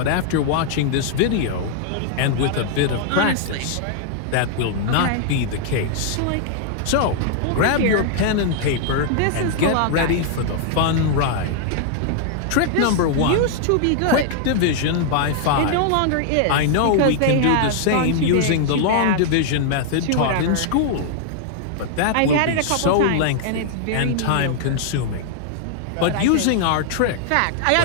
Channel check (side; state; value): both; different; correlation -0.01